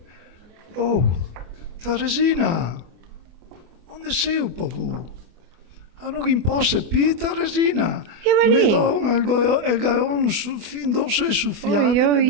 Oh, Teresina, onde sei un po' tu? Non imposse più, Teresina. Io Mi venì. do il gaon fin dosso e soffiato.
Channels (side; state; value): left; late; 24 ms